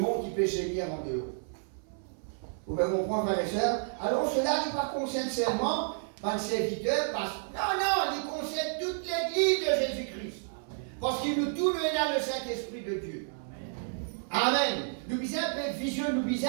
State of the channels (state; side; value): silent; left; 57 dB below the other